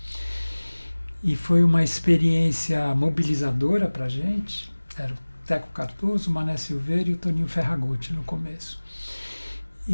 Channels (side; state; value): both; inverted; correlation -1.00